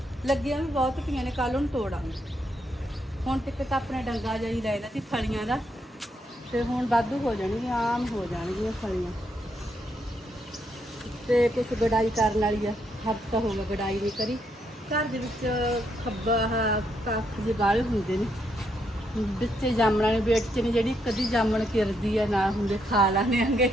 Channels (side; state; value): both; normal; correlation 0.77